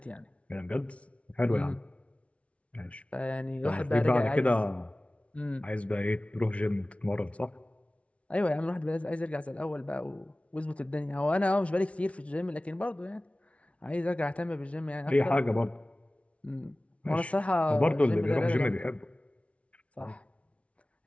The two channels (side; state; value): right; late; 0.063 ms